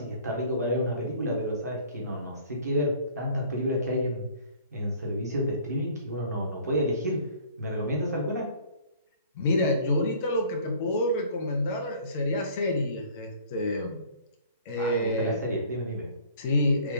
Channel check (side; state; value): both; inverted; correlation -0.52